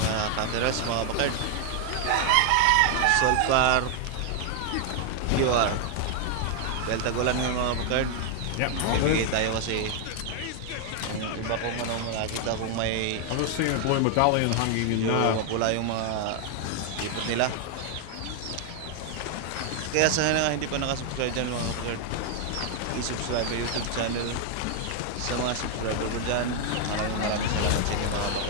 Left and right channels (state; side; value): different; both; correlation 0.00